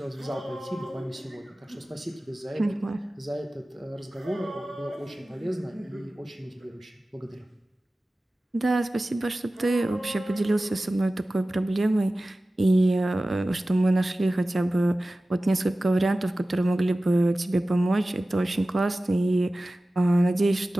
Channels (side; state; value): both; normal; correlation 0.96